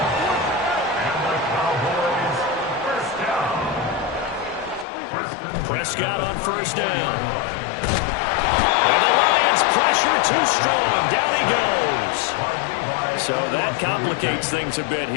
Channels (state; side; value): drops out; right; at 4.9 s